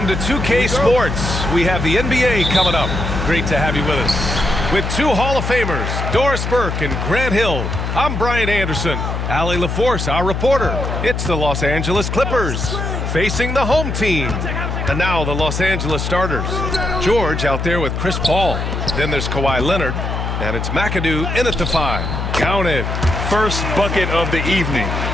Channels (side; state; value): left; noise; hum, 3 dB below the sound